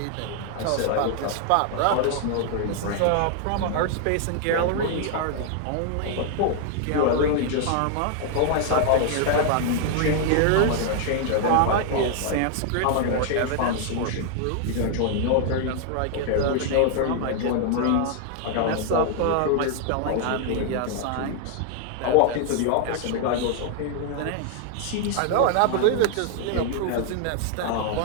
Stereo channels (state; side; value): different; both; correlation 0.00